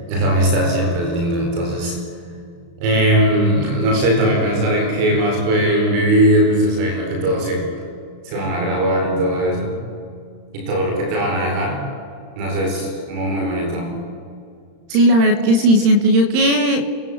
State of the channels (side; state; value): left; late; 35 ms